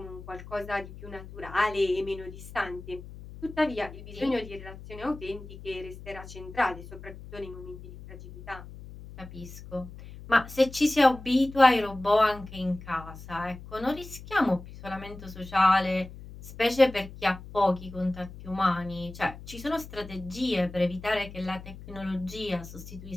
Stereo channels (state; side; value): noise; left; hum, 15 dB below the sound